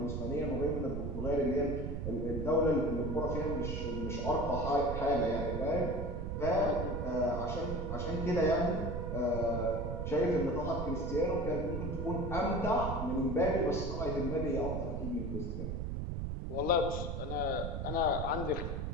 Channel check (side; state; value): right; noise; rumble, 3 dB below the sound